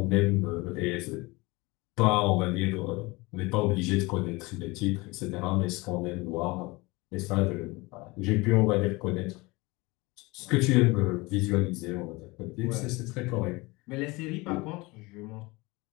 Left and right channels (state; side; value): quieter; right; 23.8 dB